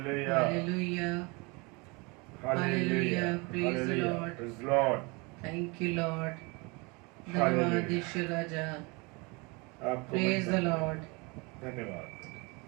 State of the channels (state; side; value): quieter; left; 28.2 dB